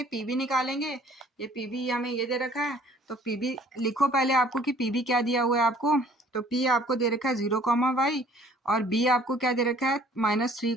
PB निकालेंगे। ये PB हमें ये दे रखा है, तो PB लिखो पहले आपको कि PB क्या दिया हुआ है आपको। तो P आपको दे रखा है 0 कॉमा वाई और B आपको क्या दे रखा है -3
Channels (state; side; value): normal; both; correlation 0.56